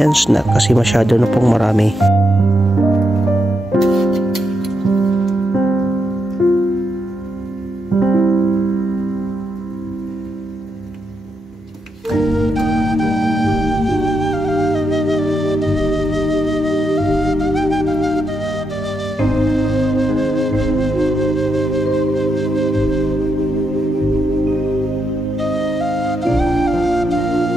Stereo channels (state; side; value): normal; both; correlation 0.83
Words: yan kasi masyado na pong marami.